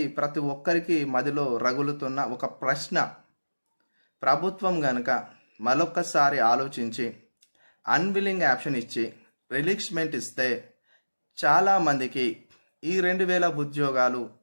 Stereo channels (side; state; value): both; inverted; correlation -1.00